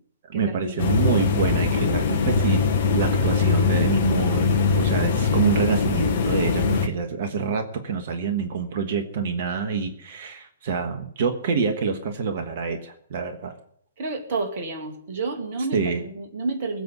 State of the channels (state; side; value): inverted; both; correlation -0.41